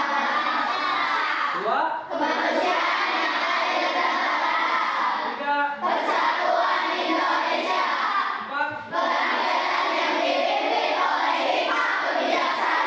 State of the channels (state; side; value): identical; both; correlation 1.00